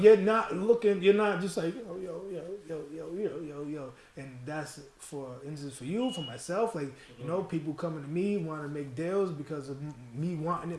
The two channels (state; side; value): identical; both; correlation 1.00